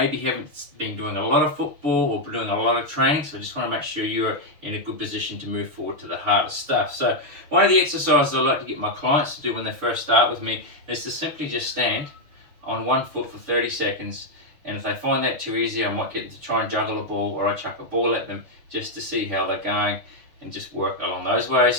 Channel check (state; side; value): late; left; 6.5 ms